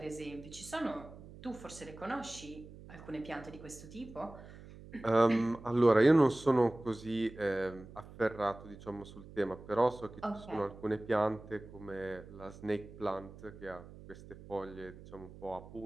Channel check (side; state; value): right; noise; hum, 17 dB below the sound